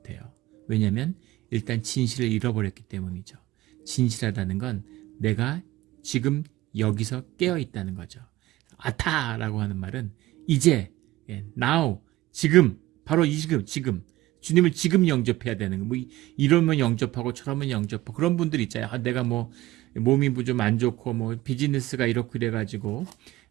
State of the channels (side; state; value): left; quieter; 17.1 dB